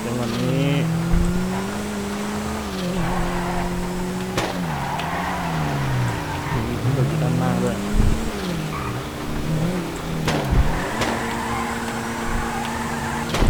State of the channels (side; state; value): both; identical; correlation 1.00